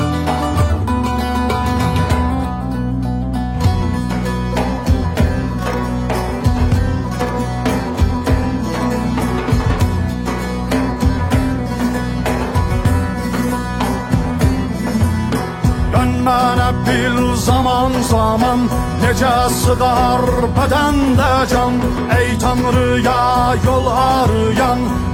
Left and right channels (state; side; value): identical; both; correlation 1.00